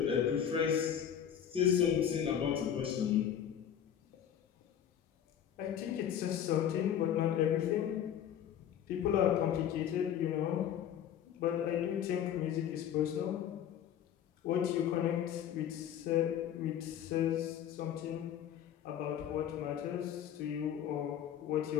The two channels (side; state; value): right; quieter; 9.6 dB